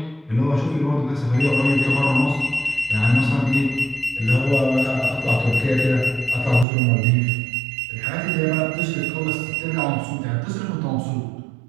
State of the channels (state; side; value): drops out; left; at 6.7 s